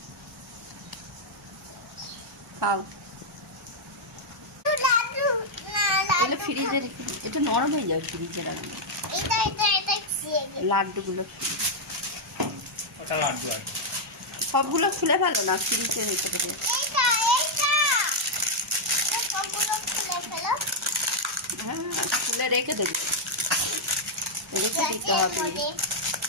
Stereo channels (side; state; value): both; normal; correlation -0.03